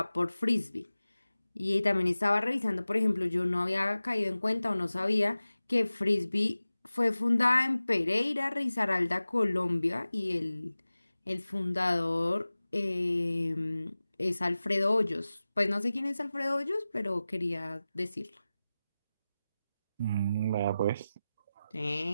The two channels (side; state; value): both; inverted; correlation -0.96